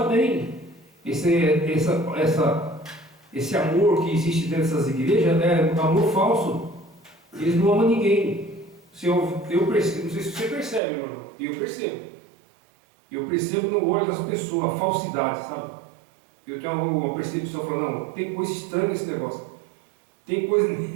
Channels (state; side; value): drops out; left; at 10.8 s